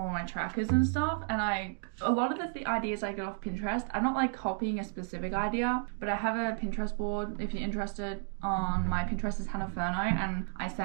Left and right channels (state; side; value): silent; left; 56 dB below the other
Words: my trackers and stuff. And a lot of the ideas I get off Pinterest. I'm not copying a specific idea, but I have a Pinterest board, if you're interested. On my Pinterest is Hannah Furno, and I